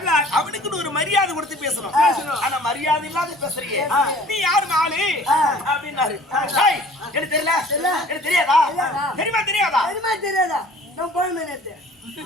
அவனுக்குன்னு ஒரு மரியாதை கொடுத்து பேசணும். ஆனா மரியாதை இல்லாத பேசுறீங்க, நீ யாரு மாலு அப்படின்னாரு. எனக்கு தெரியல, எனக்கு தெரியாதா? தெரியாதா?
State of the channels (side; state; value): both; normal; correlation 0.50